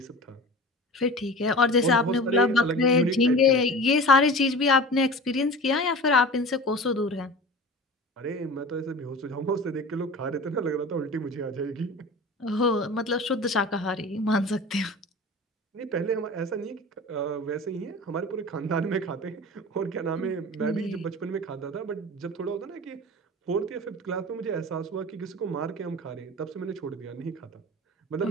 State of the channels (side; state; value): both; normal; correlation 0.36